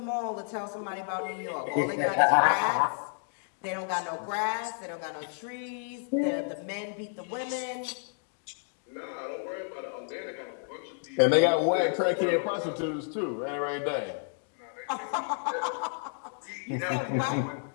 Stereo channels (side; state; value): right; silent; 57 dB below the other